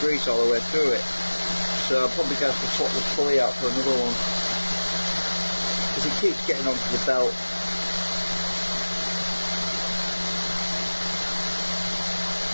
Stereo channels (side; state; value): both; inverted; correlation -1.00